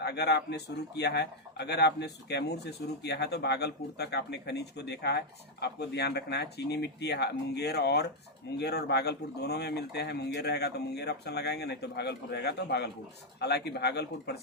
अगर आपने शुरू किया है, अगर आपने कैमूर से शुरू किया है तो भागलपुर तक आपने खनिज को देखा है। आपको ध्यान रखना है चीनी मिट्टी मुंगेर और भागलपुर दोनों में मिलते हैं। मुंगेर रहेगा तो मुंगेर ऑप्शन लगाएंगे, नहीं तो भागलपुर रहेगा तो भागलपुर। हालांकि भागलपुर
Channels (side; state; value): both; normal; correlation 0.00